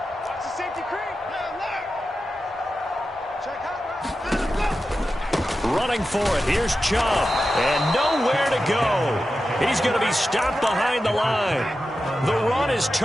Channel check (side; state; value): both; normal; correlation 0.92